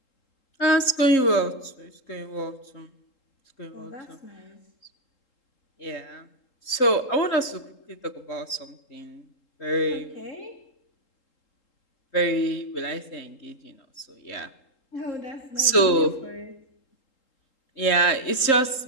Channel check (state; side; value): late; right; 3.8 ms